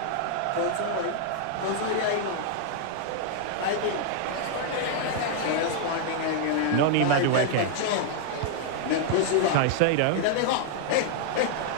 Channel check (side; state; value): both; different; correlation 0.00